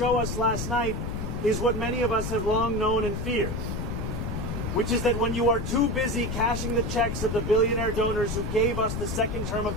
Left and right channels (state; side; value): noise; left; rumble, 4 dB below the sound